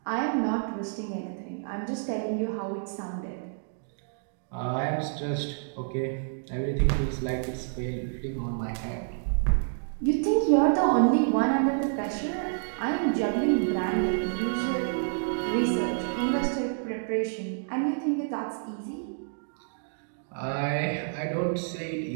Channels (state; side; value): silent; left; digital silence